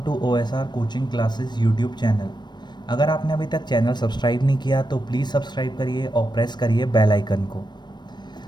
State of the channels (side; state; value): right; late; 0.21 ms